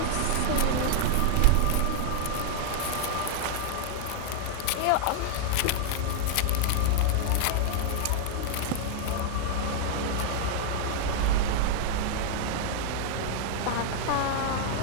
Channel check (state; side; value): different; both; correlation -0.01